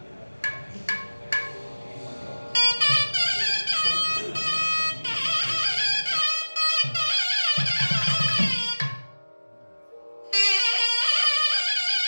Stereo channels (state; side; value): inverted; both; correlation -1.00